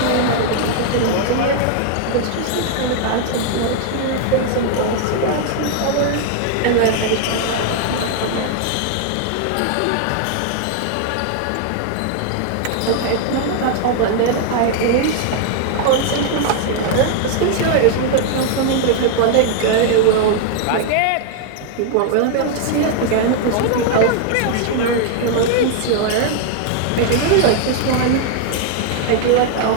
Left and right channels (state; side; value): different; both; correlation 0.00